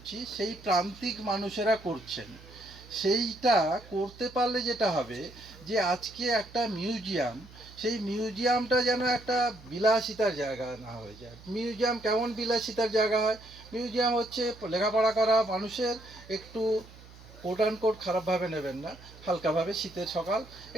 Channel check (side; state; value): right; noise; hum, 20 dB below the sound